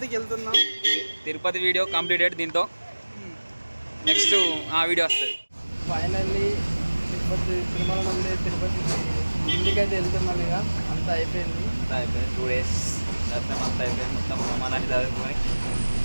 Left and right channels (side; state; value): both; inverted; correlation -1.00